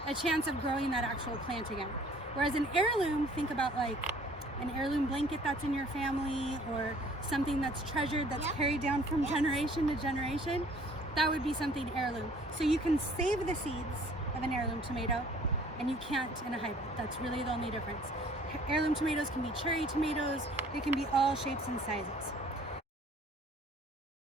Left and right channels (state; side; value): normal; both; correlation 0.55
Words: a chance of growing that actual plant again. Whereas an heirloom, think about like an heirloom blanket that's in your family or something that's treasured, that's carried down from generation to generation. That would be something heirloom. So you can save the seeds of an heirloom tomato and you can't in a hybrid. That's really the only difference. Heirloom tomatoes can be cherry tomatoes. They can be all shapes and sizes.